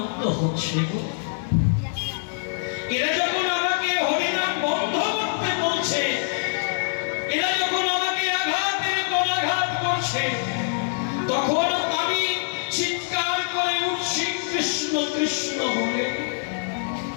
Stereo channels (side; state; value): right; silent; digital silence